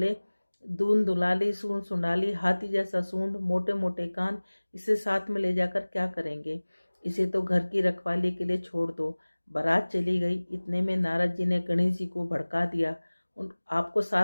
दून दुलाली, सूंड सुंडाली, हाथी जैसा सूंड, मोटे मोटे कान, इसे साथ में ले जाकर क्या करेंगे। इसे तो घर की रखवाली के लिए छोड़ दो। बारात चली गई। इतने में नारद जी ने गणेश जी को भड़का दिया। आपको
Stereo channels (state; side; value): inverted; both; correlation -1.00